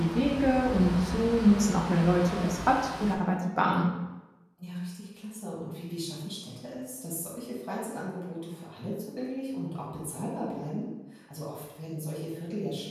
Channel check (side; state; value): both; identical; correlation 1.00